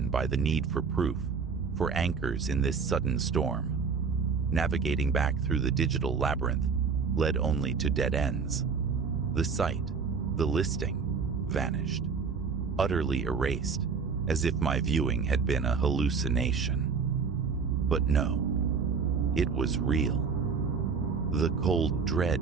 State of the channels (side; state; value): left; quieter; 5.5 dB